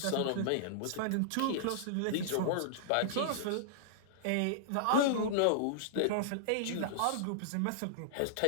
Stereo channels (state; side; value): different; both; correlation -0.01